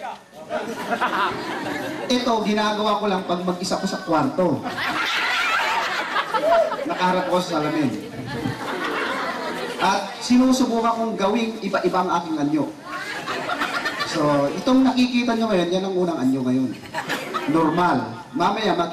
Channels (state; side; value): identical; both; correlation 1.00